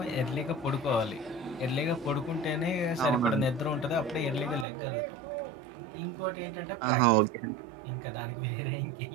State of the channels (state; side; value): drops out; left; at 4.7 s